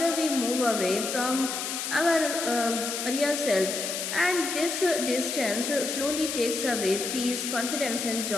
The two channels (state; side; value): noise; left; hiss, 3 dB below the sound